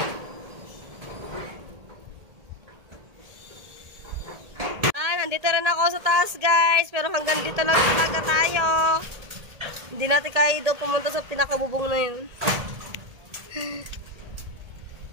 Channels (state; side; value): late; left; 1.8 ms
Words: Nandito rin ako sa taas, guys. Pero hanggang dito lang talaga tayo. Hindi natin kaya daw pumunta sa pinakabubong na yun.